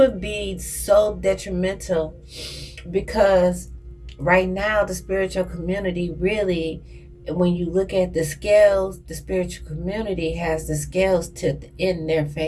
be so detrimental, because right now the spiritual community really, when you look at the scales, the spiritual community has the scales tipped in their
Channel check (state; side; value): identical; both; correlation 1.00